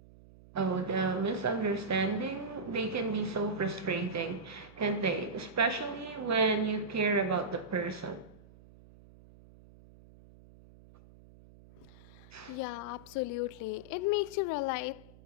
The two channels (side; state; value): right; noise; hum, 22 dB below the sound